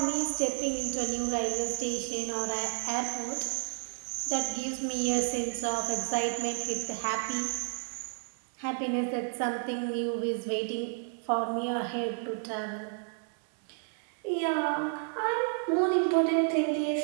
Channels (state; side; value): silent; left; 57 dB below the other